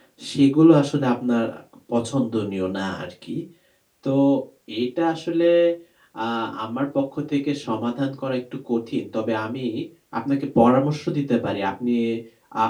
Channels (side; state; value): both; identical; correlation 1.00